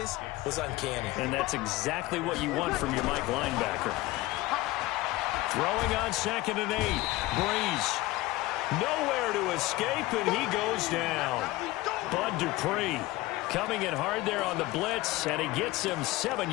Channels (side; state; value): right; quieter; 18.9 dB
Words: was uncanny. And that's exactly what you want from your Mike linebacker. Throwing on 2nd and 8. Breeze. Nowhere to escape, and he goes down. Bud Dupree coming in hard there on the blitz, and he gets him 7